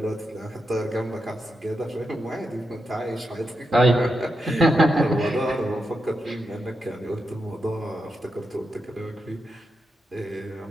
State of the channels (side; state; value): both; normal; correlation 0.86